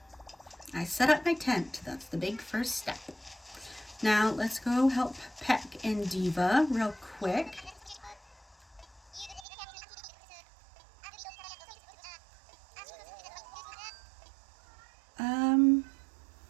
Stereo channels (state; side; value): drops out; left; at 9.5 s